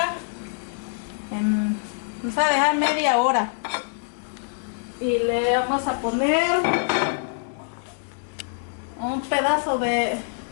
Vamos a dejar media hora. Y le vamos a poner un pedazo de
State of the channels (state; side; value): silent; right; digital silence